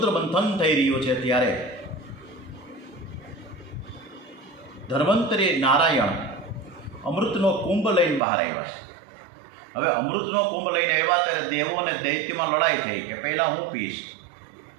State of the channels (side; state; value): left; drops out; at 8.2 s